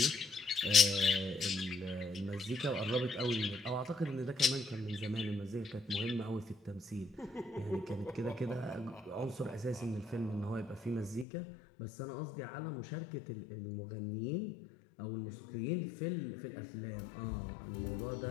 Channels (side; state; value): right; drops out; at 11.2 s